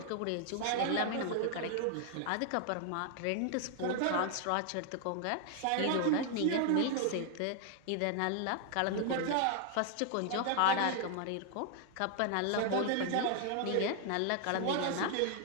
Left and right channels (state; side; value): different; both; correlation 0.00